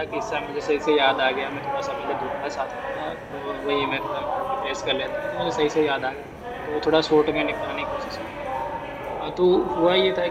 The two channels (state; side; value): identical; both; correlation 1.00